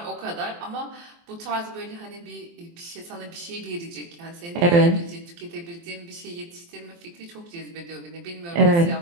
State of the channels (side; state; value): left; late; 23 ms